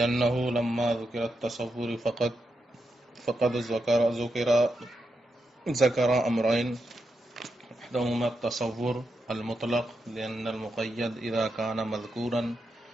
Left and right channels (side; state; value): both; normal; correlation 0.85